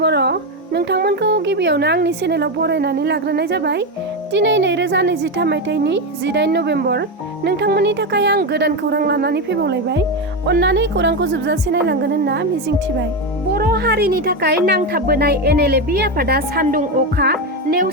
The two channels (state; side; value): normal; both; correlation 0.12